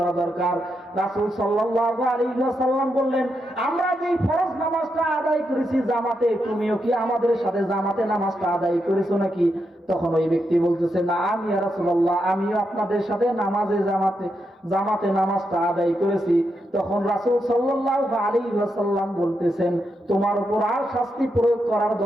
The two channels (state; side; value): normal; both; correlation 0.84